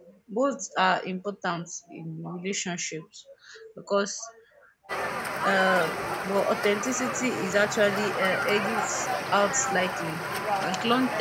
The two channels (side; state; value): both; identical; correlation 1.00